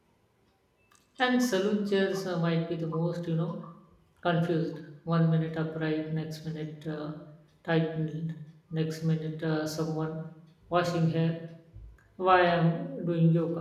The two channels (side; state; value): both; identical; correlation 1.00